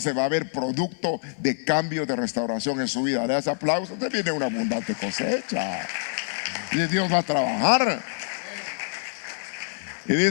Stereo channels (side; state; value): right; silent; 58 dB below the other